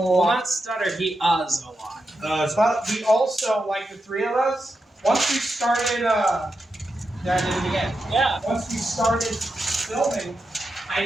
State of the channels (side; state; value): both; normal; correlation 0.88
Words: a Well, lot. not stutter. He uhs a lot. But we also, like the three of us, once we started, yeah, I did it again. Yeah. Once we started filming, I